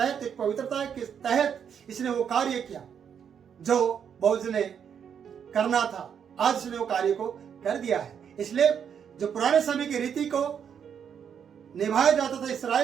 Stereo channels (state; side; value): quieter; left; 7.8 dB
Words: एक पवित्रता के तहत इसने वो कार्य किया जो बोअज ने करना था। आज उसने वो कार्य को कर दिया है। इसलिए जो पुराने समय की रीति को निभाया जाता था